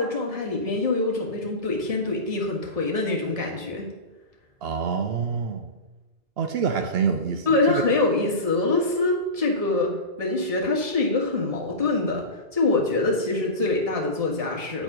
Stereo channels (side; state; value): left; late; 1.7 ms